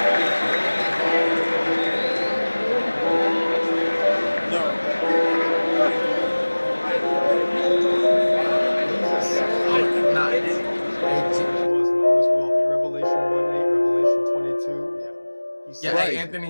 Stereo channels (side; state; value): both; inverted; correlation -1.00